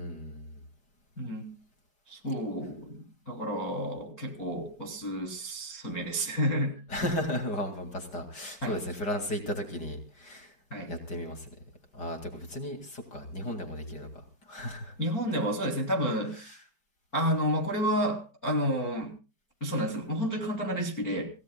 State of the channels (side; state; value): right; late; 5.0 ms